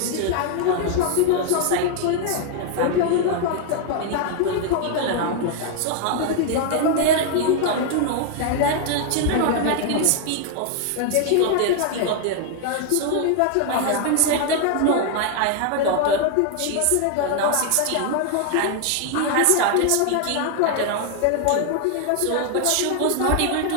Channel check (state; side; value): different; both; correlation 0.00